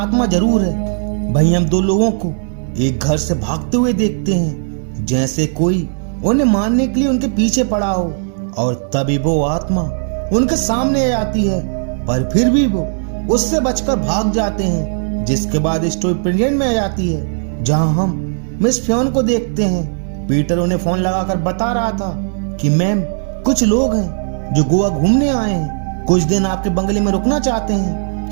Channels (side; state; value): left; silent; 67 dB below the other